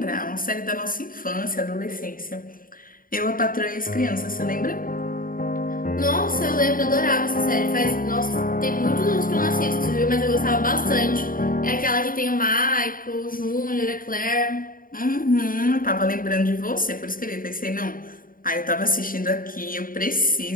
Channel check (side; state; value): right; late; 0.41 ms